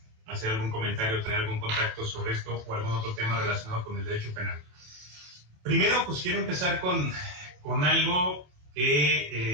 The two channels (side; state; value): left; late; 28 ms